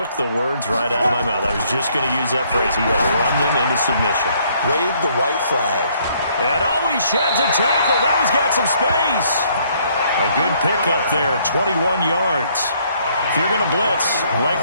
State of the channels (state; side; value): inverted; both; correlation -0.66